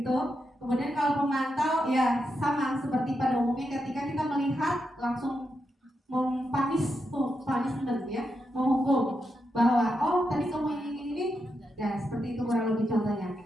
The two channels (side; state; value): both; normal; correlation 0.85